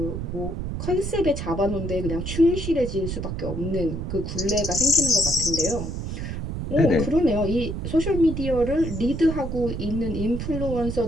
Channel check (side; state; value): right; noise; rumble, 5 dB below the sound